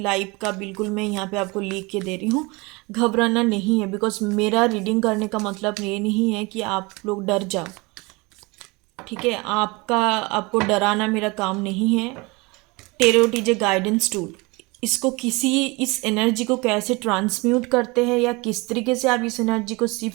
लाइफ का बिल्कुल मैं यहाँ पे आपको लिख के दे रही हूँ। घबराना नहीं है, बिकॉज मेरा रीडिंग करने का मतलब ये नहीं है कि आप लोग डर जाओ, ठीक है। आपको डराना मेरा काम नहीं है। Tarot is a guidance tool. इसको इस एनर्जी को कैसे ट्रांसम्यूट करते हैं या किस तरीके से आप इस एनर्जी को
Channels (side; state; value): left; quieter; 25.6 dB